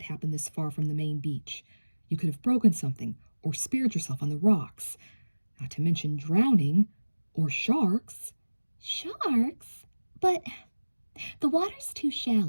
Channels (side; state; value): both; inverted; correlation -1.00